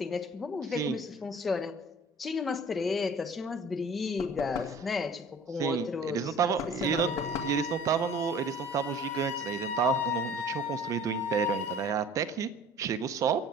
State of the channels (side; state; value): both; normal; correlation 0.47